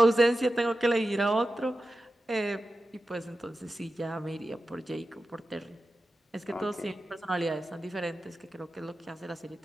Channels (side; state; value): both; normal; correlation 0.92